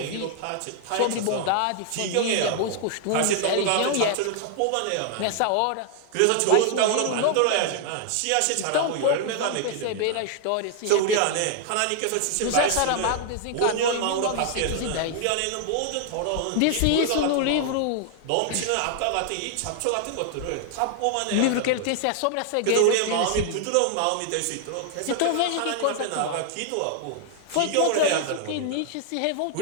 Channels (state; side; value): different; both; correlation 0.00